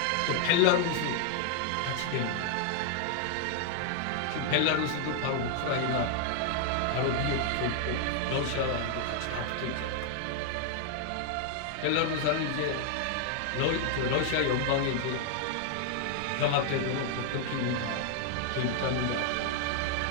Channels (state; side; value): different; both; correlation 0.00